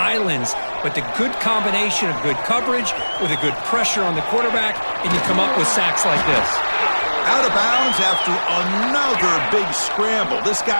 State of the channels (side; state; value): both; inverted; correlation -1.00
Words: but the good combination of good coverage with a good pressure on the quarterback, and you come up with sacks like this. Out of bounds after another big scramble. This